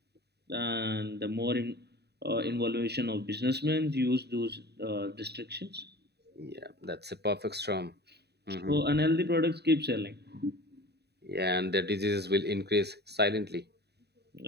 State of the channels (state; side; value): late; left; 0.48 ms